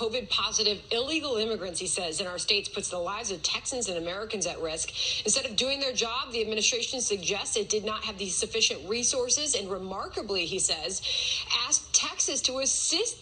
illegal immigrants, he says, in our states puts the lives of Texans and Americans at risk. Instead of doing their job, the administration suggests it did not have the sufficient resources and remarkably, he says, asked Texas to assist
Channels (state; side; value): identical; both; correlation 1.00